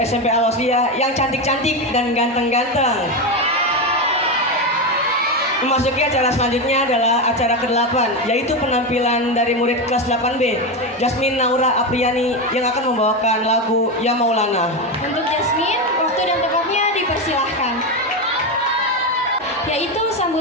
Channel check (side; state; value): both; normal; correlation 0.13